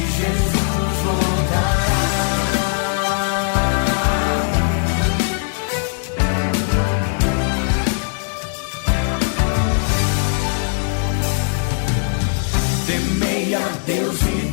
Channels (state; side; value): silent; right; 66 dB below the other